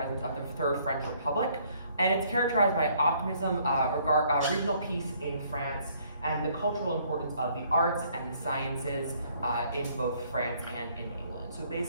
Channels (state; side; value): inverted; both; correlation -0.64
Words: of the Third French Republic. And it's characterized by optimism, regional peace in France, and the cultural importance of the arts and the sciences in both France and in England. So